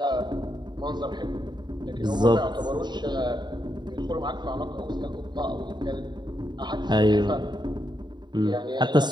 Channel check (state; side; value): late; left; 0.21 ms